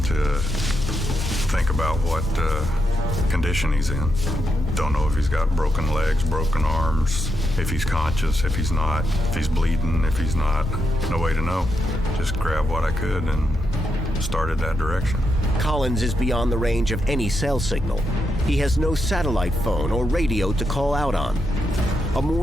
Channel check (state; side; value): normal; both; correlation 0.83